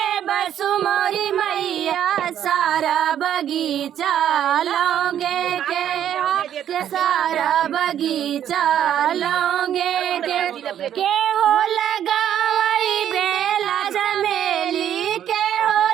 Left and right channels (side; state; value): left; quieter; 10.3 dB